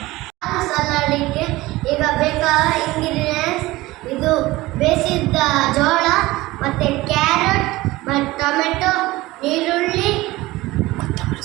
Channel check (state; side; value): quieter; left; 19.1 dB